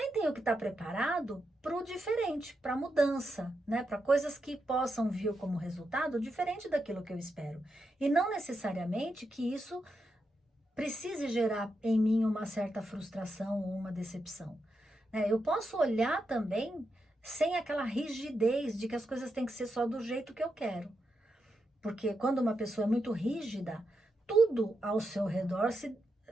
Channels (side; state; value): both; normal; correlation 0.85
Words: tenho que estar preparado para o diferente, para a mudança, né? Para coisas que possam vir como resultado diferente daquilo que eu espero. E não necessariamente que isso precise gerar em mim uma certa frustração ou uma decepção. Eu posso olhar também sem aquela rigidez de que as coisas têm que ser só do jeito que eu quero. Porque quando uma pessoa é muito rígida, tudo ao seu redor